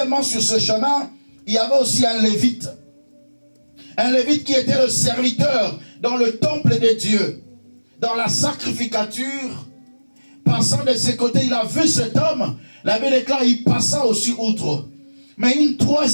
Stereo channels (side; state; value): both; inverted; correlation -1.00